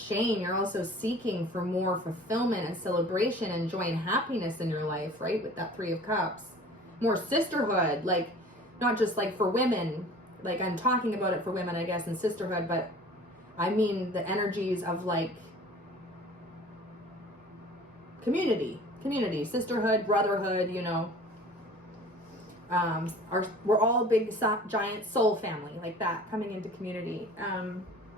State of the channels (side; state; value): both; normal; correlation 0.45